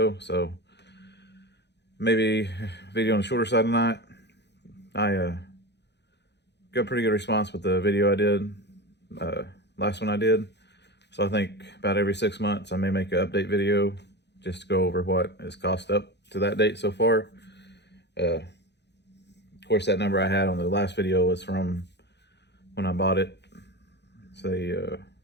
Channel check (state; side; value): late; right; 0.50 ms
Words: so maybe video on the shorter side tonight. I got a pretty good response with the video I did, last one I did. So I think about every 6 months I may make an update video just to go over what has cost up to that date so far. Of course, that number I had on the last video was from when I bought it, say